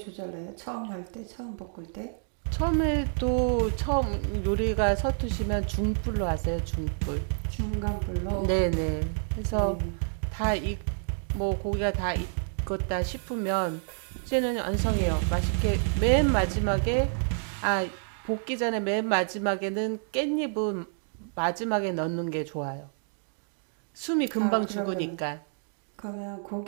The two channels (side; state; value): left; silent; digital silence